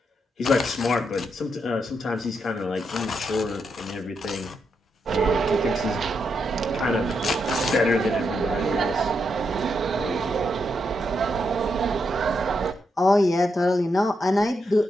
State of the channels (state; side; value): normal; both; correlation 0.82